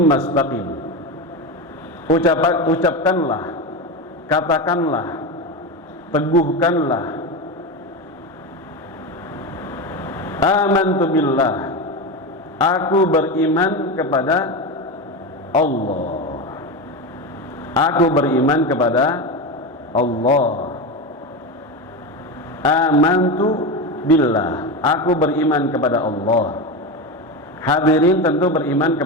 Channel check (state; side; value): normal; both; correlation 0.19